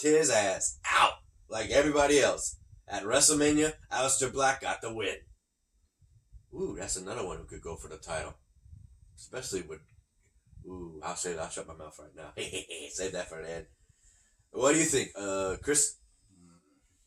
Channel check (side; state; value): both; identical; correlation 1.00